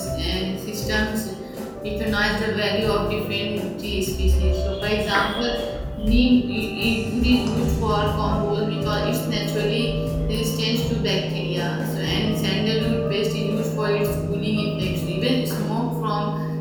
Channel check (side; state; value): both; identical; correlation 1.00